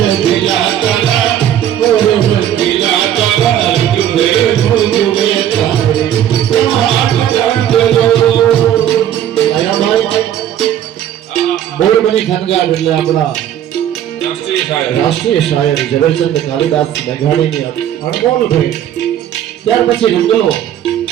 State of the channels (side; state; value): left; quieter; 10.8 dB